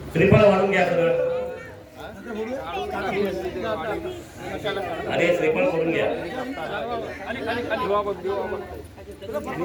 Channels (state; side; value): identical; both; correlation 1.00